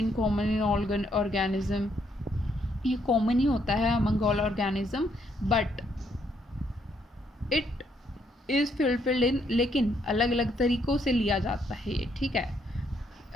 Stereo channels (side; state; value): both; normal; correlation 0.73